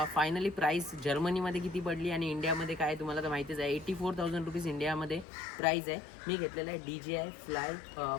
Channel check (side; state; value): right; drops out; at 5.2 s